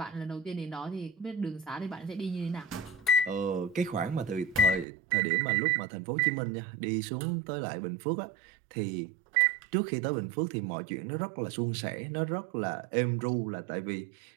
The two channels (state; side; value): drops out; left; at 4.9 s